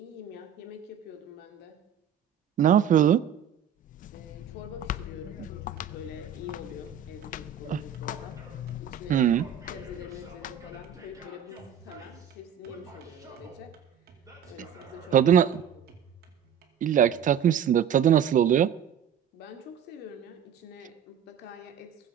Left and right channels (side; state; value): left; quieter; 8.2 dB